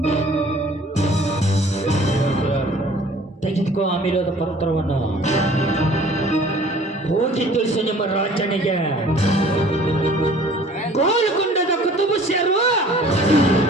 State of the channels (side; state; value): both; normal; correlation 0.51